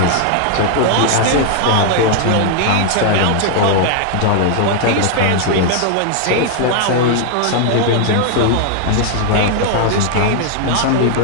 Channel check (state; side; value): different; both; correlation 0.00